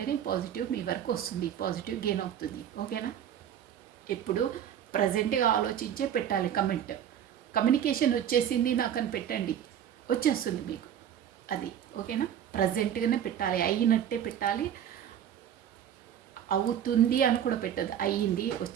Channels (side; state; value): left; quieter; 9.8 dB